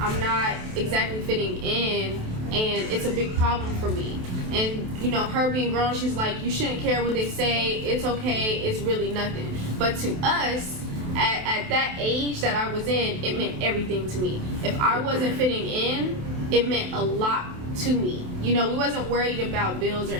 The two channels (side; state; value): left; late; 28 ms